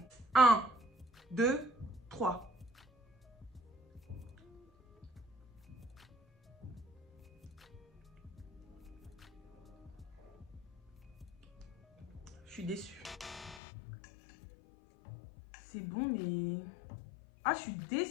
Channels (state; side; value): drops out; right; at 13.6 s